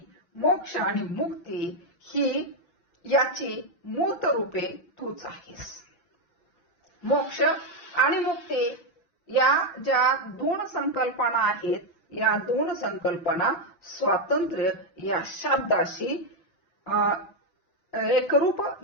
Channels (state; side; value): late; right; 5.8 ms